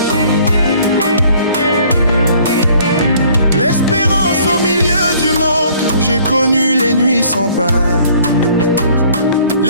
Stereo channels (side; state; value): both; inverted; correlation -0.57